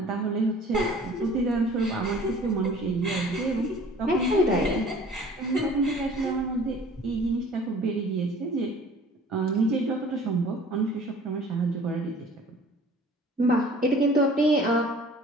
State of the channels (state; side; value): normal; both; correlation 0.49